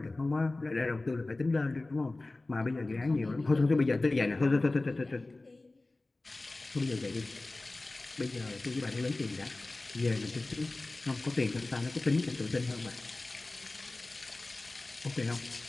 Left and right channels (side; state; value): right; quieter; 3.0 dB